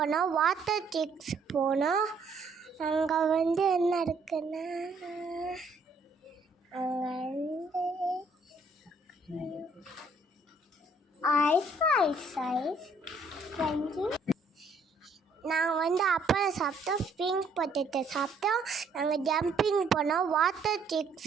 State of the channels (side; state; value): left; quieter; 3.2 dB